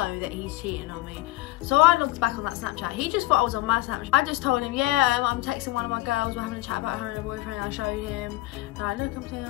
that he's cheating on me. So I looked back on that Snapchat. He just thought I was on my Snapchat. I just told him, yeah, I'm texting one of my girls, we're having a chat about her and her boyfriend. I showed him, and I look, I'm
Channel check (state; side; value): quieter; right; 18.9 dB